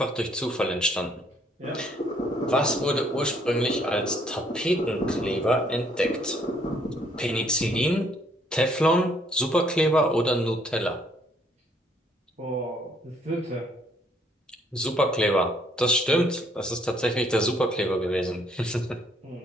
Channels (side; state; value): both; normal; correlation 0.66